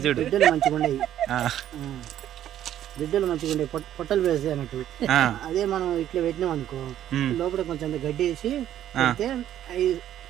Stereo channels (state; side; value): quieter; left; 11.5 dB